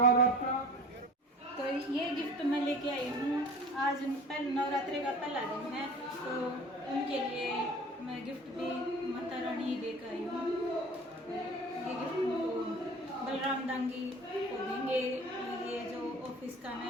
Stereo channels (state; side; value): normal; both; correlation 0.42